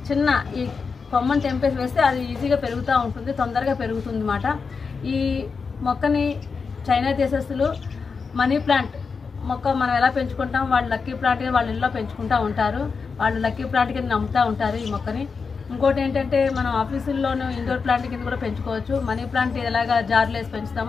చిన్న ఈ కొమ్మను తెంపేసి వేస్తే అది ఈజీగా పెరుగుతూ ఉంటుంది, తొందరగా పెరుగుతుంది అన్నమాట. ఈ మొక్కని చైనా దేశస్తులు మనీ ప్లాంట్ మొక్క మనం ఎలా పెంచుకుంటాం, వాళ్ళు లక్కీ ప్లాంట్ వాళ్ళ ఇళ్ళలో పెంచుకుంటూ ఉంటారు. వాళ్ళు లక్కీ ప్లాంట్ కింద నమ్ముతూ ఉంటారు ఈ మొక్కని. ఇంకోటి ఏంటంటే మనం ఆఫీసుల్లోనూ ఇండోర్ ప్లాంట్ కింద కూడా పెంచుకోవచ్చు. మనీ ప్లాంట్ ఎలాగా జార్లు వేసి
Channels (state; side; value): quieter; right; 5.1 dB